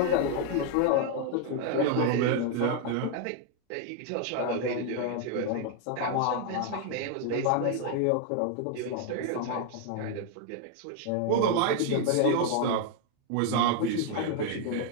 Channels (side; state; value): both; different; correlation 0.00